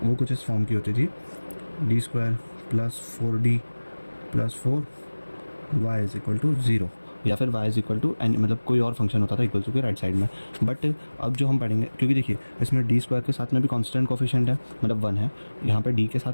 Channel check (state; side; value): inverted; both; correlation -1.00